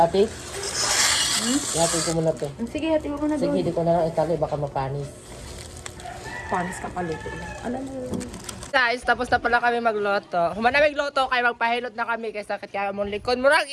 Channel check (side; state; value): both; identical; correlation 1.00